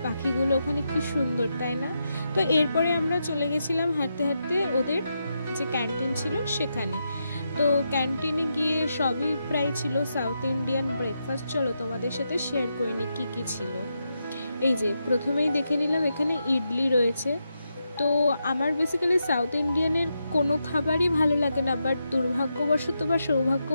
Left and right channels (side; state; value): both; inverted; correlation -0.85